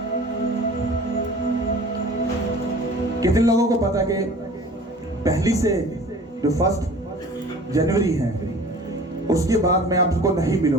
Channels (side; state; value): both; normal; correlation 0.44